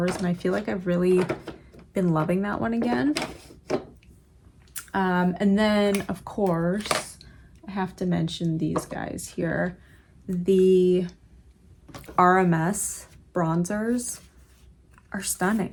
and I feel like I've really been loving that one again. And then, of course, I have to mention these guys here. The RMS bronzers are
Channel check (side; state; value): both; identical; correlation 1.00